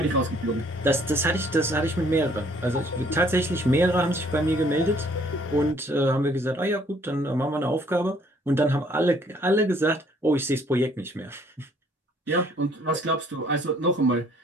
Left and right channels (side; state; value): both; normal; correlation 0.61